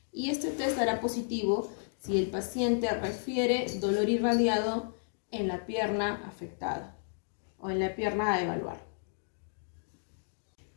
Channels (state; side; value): silent; right; digital silence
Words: y este test dará positivo si el paciente refiere dolor irradiado en la pierna afectada o en la pierna a evaluar.